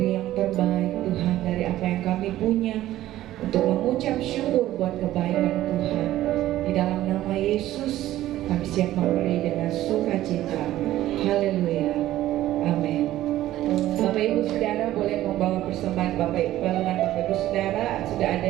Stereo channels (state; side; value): quieter; left; 14.3 dB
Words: yang terbaik Tuhan dari apa yang kami punya untuk mengucap syukur buat kebaikan Tuhan. Di dalam nama Yesus kami siap memberi dengan sukacita. Haleluya. Amin. Bapak Ibu Saudara boleh membawa persembahan palungan Bapak Ibu Saudara. Sudah